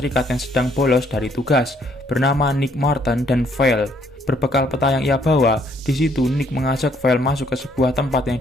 yang sedang bolos dari tugas, bernama Nick Martin dan Val. Berbekal peta yang ia bawa, di situ Nick mengajak Val masuk ke sebuah tempat yang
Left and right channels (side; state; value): both; normal; correlation 0.67